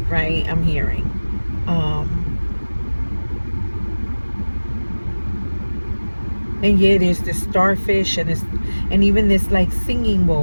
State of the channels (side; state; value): both; inverted; correlation -1.00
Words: right? I'm hearing. And yeah, there's this starfish and even this like singing